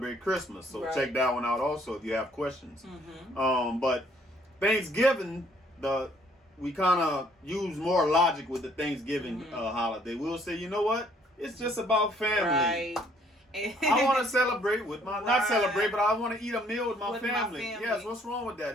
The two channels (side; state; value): both; normal; correlation 0.63